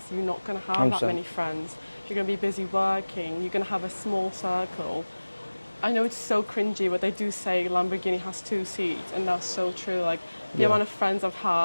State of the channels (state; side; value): inverted; both; correlation -1.00